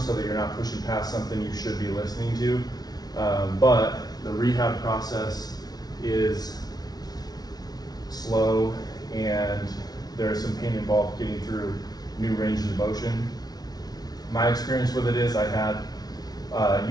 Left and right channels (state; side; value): late; right; 0.19 ms